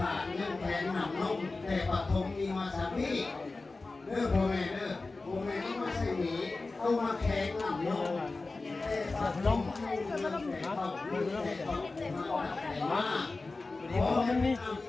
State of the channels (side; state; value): right; quieter; 3.5 dB